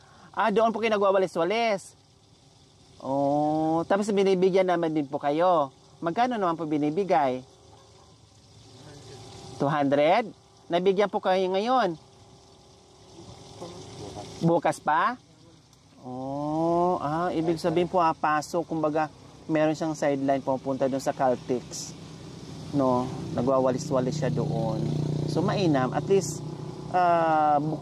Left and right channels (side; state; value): both; identical; correlation 1.00